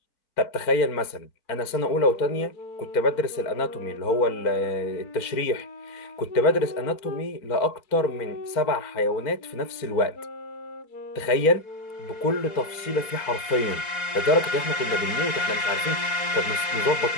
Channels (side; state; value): right; late; 4.5 ms